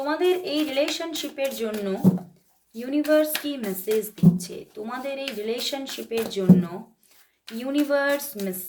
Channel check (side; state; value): both; identical; correlation 1.00